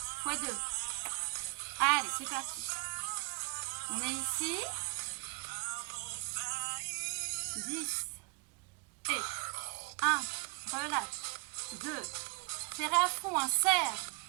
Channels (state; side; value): quieter; left; 28.3 dB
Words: Fois 2. Allez, c'est parti. On est ici. 10. Et 1. Relâche. 2. Serrez à fond, hein. Serre.